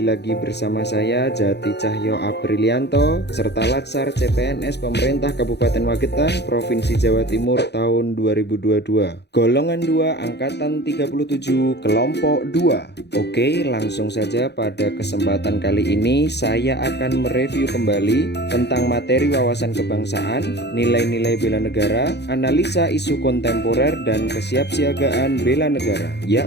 lagi bersama saya Jati Cahyo Aprilianto serta Latsar CPNS Pemerintah Kabupaten Magetan, Provinsi Jawa Timur tahun 2022. Golongan 2 angkatan 37 kelompok 2. Oke, langsung saja pada kesempatan kali ini saya akan mereview kembali tentang materi wawasan kebangsaan, nilai-nilai bela negara, analisa isu kontemporer dan kesiapsiagaan bela negara.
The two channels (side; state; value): right; late; 0.49 ms